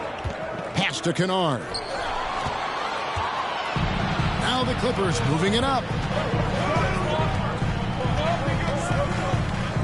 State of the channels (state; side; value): identical; both; correlation 1.00